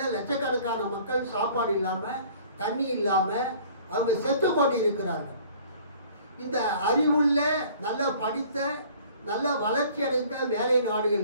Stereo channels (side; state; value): both; inverted; correlation -0.52